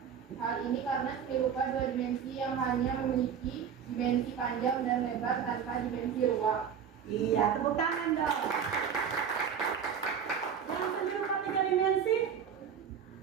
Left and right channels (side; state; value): left; quieter; 7.7 dB